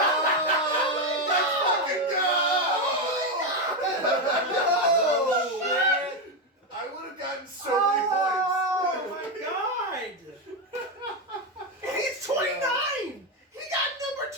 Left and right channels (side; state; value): both; normal; correlation 0.09